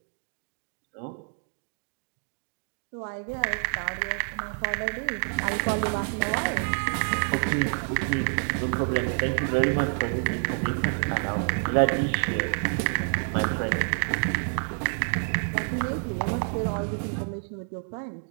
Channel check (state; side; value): silent; left; digital silence